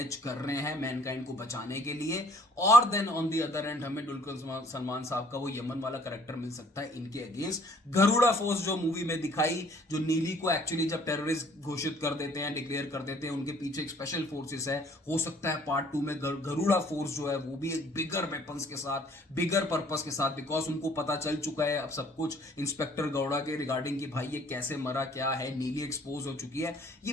कर रहे हैं मैनकाइंड को बचाने के लिए। और then on the other end हमें दुलकर सलमान साहब का वो यमन वाला कैरेक्टर मिल सकता है इनके अगेंस्ट। गरुड़ा फोर्स जो मूवी में दिखाई, जो नीली को एक्चुअली जब टेररिस्ट घोषित कर देते हैं, डिक्लेयर कर देते हैं, उनके पीछे एक स्पेशल फोर्सेस है। हो सकता है पार्ट 2 में गरुड़ा फोर्स जो है वो भी एक बिगर वेपन्स के साथ, बिगर पर्पस के साथ, बिकॉज उनको पता चल चुका है अब सब कुछ इंस्पेक्टर गौड़ा के रिगार्डिंग कि भाई ये कैसे मरा, क्या है, नीली एक्सपोज हो चुकी है। ये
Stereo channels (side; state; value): both; normal; correlation 0.58